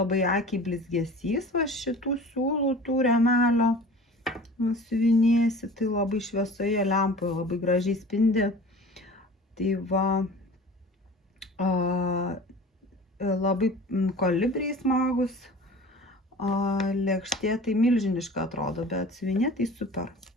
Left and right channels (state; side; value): normal; both; correlation 0.41